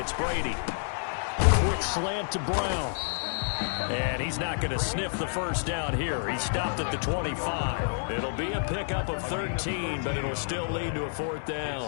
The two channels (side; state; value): right; silent; digital silence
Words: Brady. Quick slant to Brown. And he's not going to sniff the first down here. He stopped at the 25. It'll be a pickup of 13, but it'll still lead to a fourth